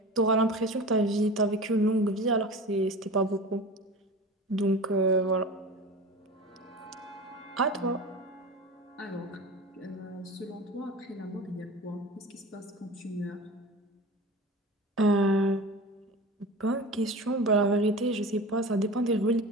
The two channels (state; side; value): normal; both; correlation 0.33